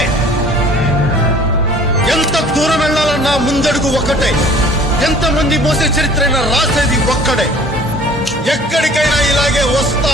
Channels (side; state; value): both; normal; correlation 0.50